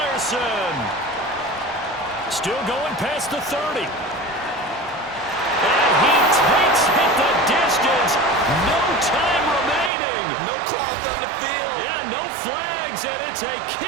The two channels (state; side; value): drops out; left; at 9.9 s